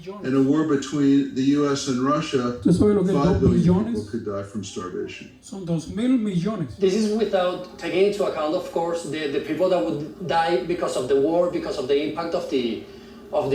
And a war between the US and Russia, 5 billion people could die from starvation. Son 2.000 millones. This is without taking into account, of course, the people that would die because of the war, because of the impact of the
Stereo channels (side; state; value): both; identical; correlation 1.00